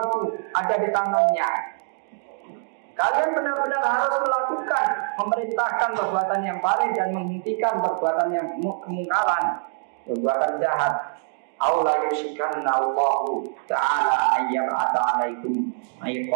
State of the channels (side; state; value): left; silent; digital silence